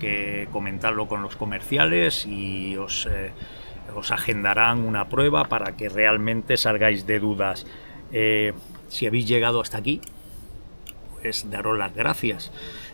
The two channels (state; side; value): inverted; both; correlation -1.00